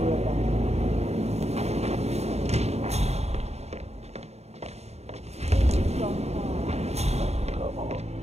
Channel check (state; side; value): late; left; 0.31 ms